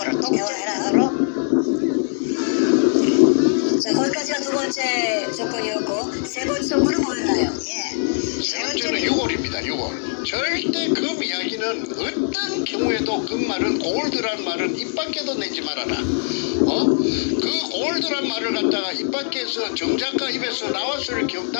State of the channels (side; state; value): right; silent; digital silence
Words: 대화해라. 자, 거기까지가 두 번째 조건이었고 세 번째 조건은 뭐였나요? 세 번째는 6월입니다. 6월. 절대 금 이야기는 어떤 경우에도 그 말은 골드란 말은 입 밖에도 내지 말아라. 그 올드란 말을 갖다가 입 밖에서 정작가 입에서